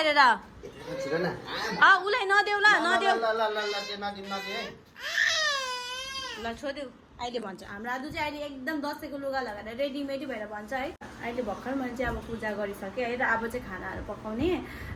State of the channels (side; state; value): both; identical; correlation 1.00